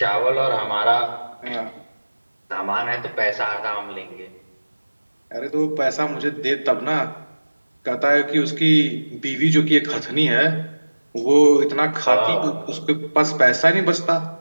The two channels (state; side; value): inverted; both; correlation -1.00